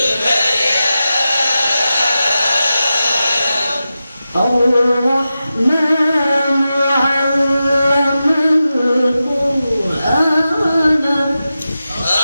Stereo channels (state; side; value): inverted; both; correlation -0.92